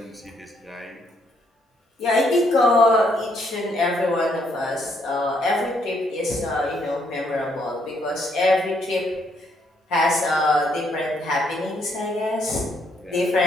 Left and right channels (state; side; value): normal; both; correlation 0.71